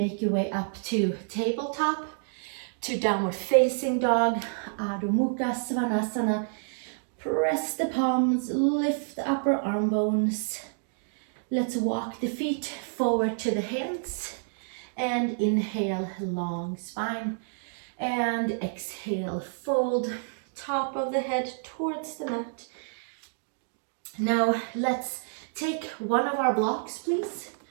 your way up to tabletop, to downward facing dog, Adho Mukha Svanasana. Press the palms, lift the upper arm bones. Let's walk the feet forward to the hands, and inhale, long spine, and exhale, fold top of the head towards the mat. Now let's take one of our blocks, please,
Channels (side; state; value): left; silent; digital silence